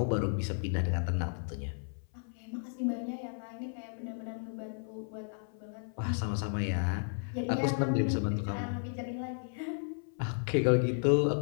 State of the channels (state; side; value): silent; right; 55 dB below the other